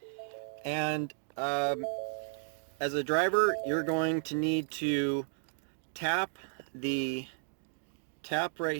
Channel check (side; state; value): left; silent; 55 dB below the other